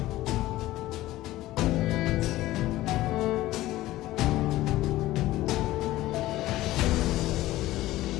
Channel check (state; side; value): quieter; right; 16.3 dB